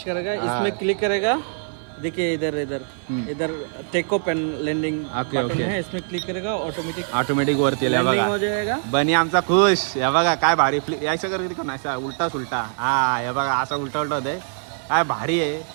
करेगा. हाँ. इसमें क्लिक करेगा. देखिए इधर इधर इधर take off and landing okay, okay. है. इसमें क्लिक करेगा ऑटोमेटिक ऑटोमॅटिक वरती आल्या बघा. हो जाएगा. बनी आमचा खुश. हे बघा काय भारी यायचं कर किती असा उलटा सुलटा. हा हे बघा असा उलटा उलटा होतंय. काय भारी आहे.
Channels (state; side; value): silent; left; 56 dB below the other